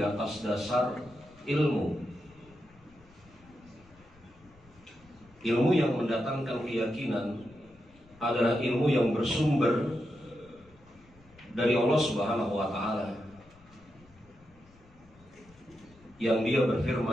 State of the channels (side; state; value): left; noise; rumble, 27 dB below the sound